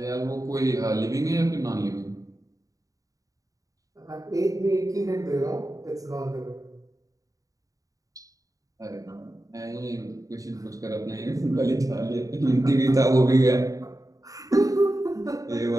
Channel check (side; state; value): left; late; 0.16 ms